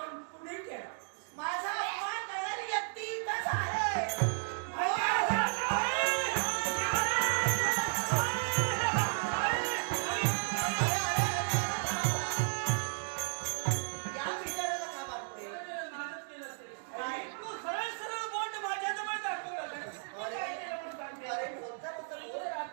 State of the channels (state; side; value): silent; left; digital silence